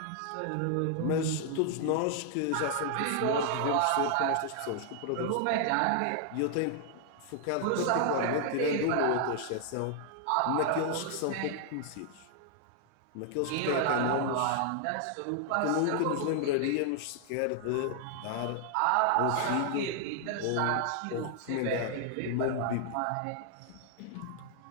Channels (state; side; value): different; both; correlation -0.01